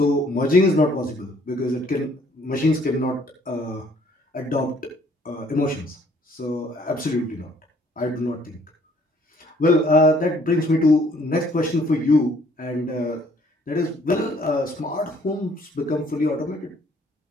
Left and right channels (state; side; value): normal; both; correlation 0.61